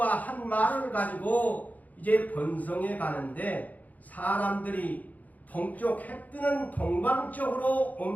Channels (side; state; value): right; late; 0.078 ms